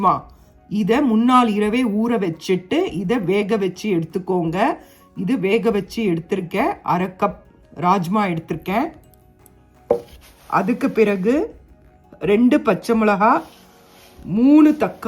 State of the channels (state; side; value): identical; both; correlation 1.00